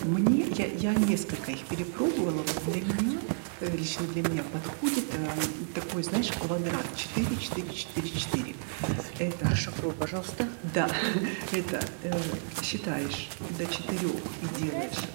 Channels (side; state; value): left; silent; digital silence